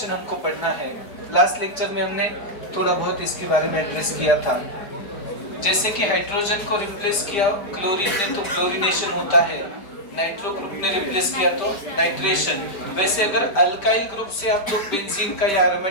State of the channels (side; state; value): right; late; 5.1 ms